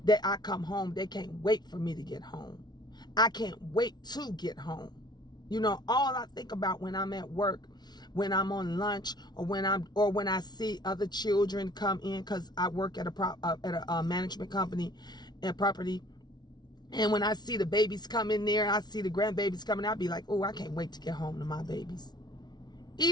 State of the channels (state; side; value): late; right; 0.20 ms